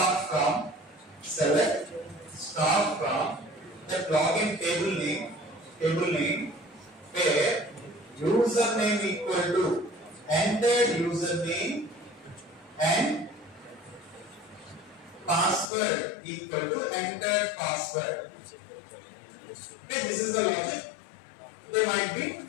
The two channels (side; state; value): right; drops out; at 15.7 s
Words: from the login table name where username equal to entered username and password equal to entered password. Okay, this is the logic they might be